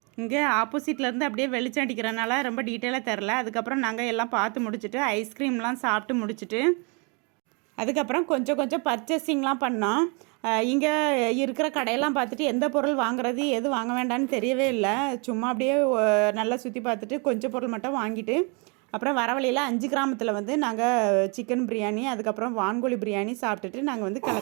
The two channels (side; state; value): left; quieter; 33.0 dB